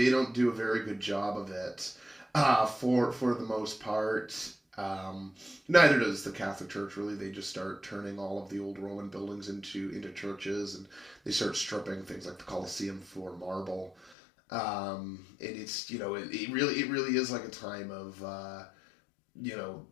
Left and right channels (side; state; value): right; drops out; at 14.2 s